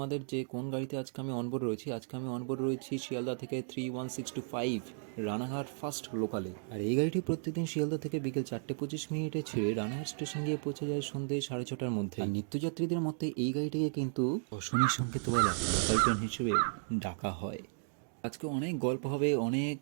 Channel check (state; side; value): silent; left; digital silence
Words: যে কোন গাড়িতে আজকে আমি অনবোর্ড রয়েছি। আজকে আমি অনবোর্ড রয়েছি শিয়ালদা থেকে 31625 রানাঘাট ফাস্ট লোকালে। আর এই গাড়িটি প্রত্যেকদিন শিয়ালদা থেকে বিকেল 4:25 ছেড়ে রানাঘাট স্টেশন গিয়ে পৌঁছে যায় সন্ধ্যে 6:30টার মধ্যে। আর নিত্যযাত্রীদের মধ্যে এই গাড়িটিকে কিন্তু অশনি সংকেতওয়ালা লোকাল ট্রেন হিসেবে ডাকা হয়। আজকে অনেক গল্প হবে, অনেক